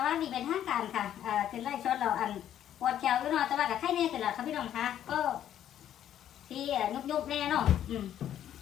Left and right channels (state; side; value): quieter; right; 10.8 dB